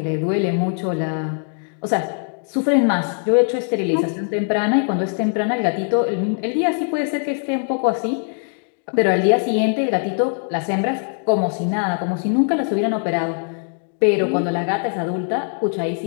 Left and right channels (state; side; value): silent; right; 58 dB below the other